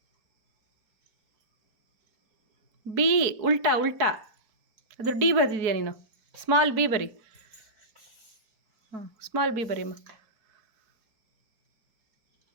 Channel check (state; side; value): late; left; 4.6 ms